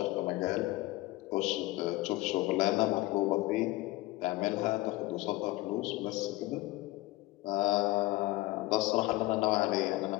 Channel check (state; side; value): quieter; right; 19.4 dB